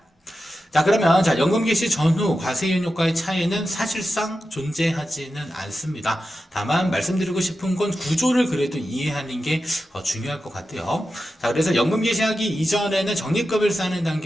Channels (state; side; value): normal; both; correlation 0.91